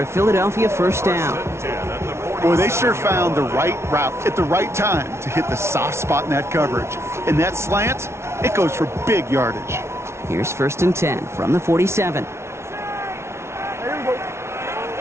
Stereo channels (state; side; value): late; left; 0.13 ms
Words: a Philadelphia first down. Boy, they sure found the right route at the right time to hit the soft spot in that coverage. And that slant, it goes for big yardage. Here's 1st and 10 from the 47.